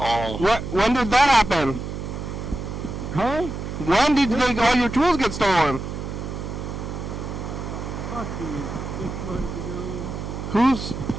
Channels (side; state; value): right; noise; hum, 6 dB below the sound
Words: When did that happen? Huh? When did all your tools get stolen? Fucking 6 months ago.